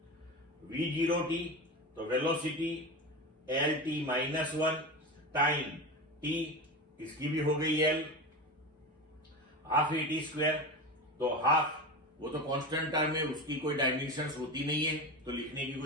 v0t तो वेलोसिटी lt -1, टाइम t इसकी भी हो गई l। हाफ at स्क्वायर तो हाफ वो तो कांस्टेंट टर्म है, उसकी कोई डायमेंशंस होती नहीं है, तो लिखने की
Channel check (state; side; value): normal; both; correlation 0.24